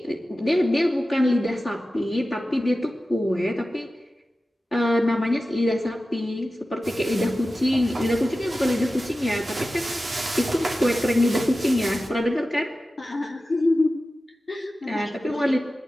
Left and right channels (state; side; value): normal; both; correlation 0.94